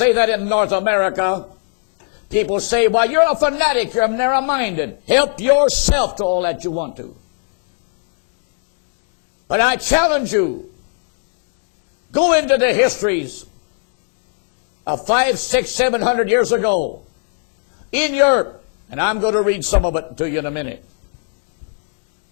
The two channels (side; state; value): right; silent; 62 dB below the other